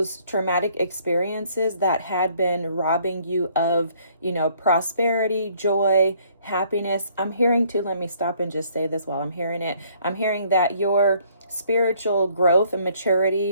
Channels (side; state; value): both; inverted; correlation -0.63